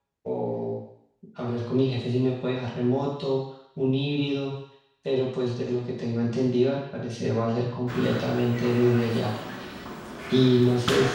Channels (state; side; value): identical; both; correlation 1.00